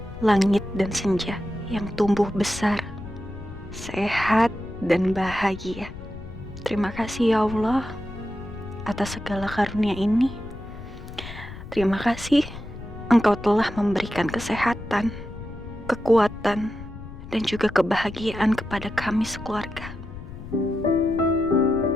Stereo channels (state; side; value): noise; left; rumble, 13 dB below the sound